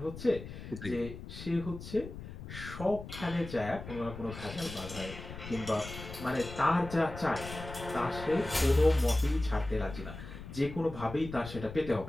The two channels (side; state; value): left; noise; rumble, 11 dB below the sound